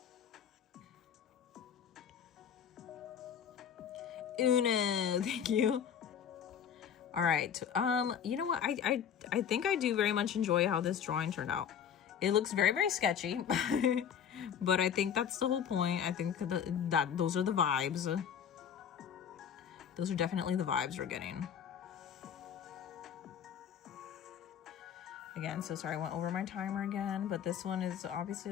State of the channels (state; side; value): quieter; right; 8.3 dB